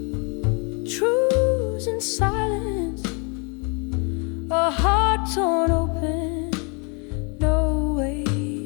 truths and silence, a heart torn open, no way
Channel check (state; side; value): quieter; right; 33.6 dB